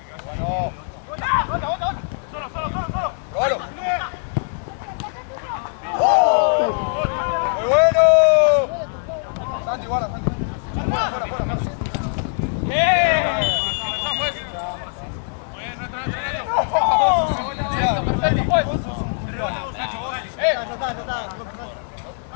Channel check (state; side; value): silent; right; 64 dB below the other